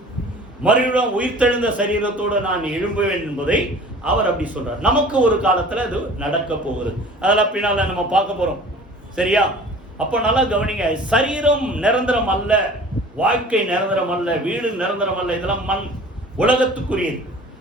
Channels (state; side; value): normal; both; correlation 0.45